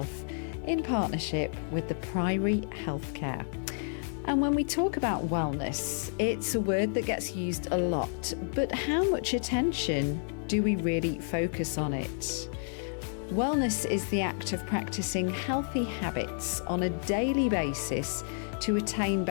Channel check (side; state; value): right; silent; digital silence